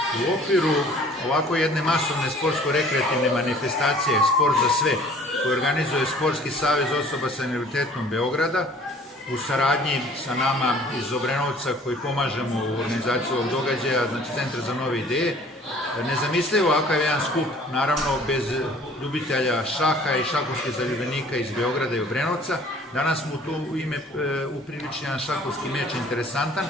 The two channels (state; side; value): normal; both; correlation 0.52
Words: U okviru ovako jedne masovne sportsko-rekreativne manifestacije Sport za sve, koju organizuje Sportski savez osoba sa invaliditetom Beograda, u saradnji sa nama iz Obrenovca koji pomažemo u organizaciji ovog događaja, znači Centar za nove ideje, nezamislivo ovakav jedan skup, naravno bez ljubitelja šaha i šahovskih zaljubljenika iz Beograda i Obrenovca. Danas smo tu u ime upriličili jedan šahovski meč interesantan,